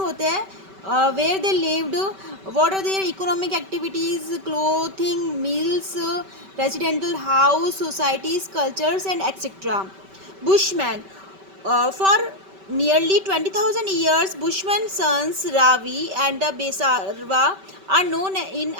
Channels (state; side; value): late; left; 5.2 ms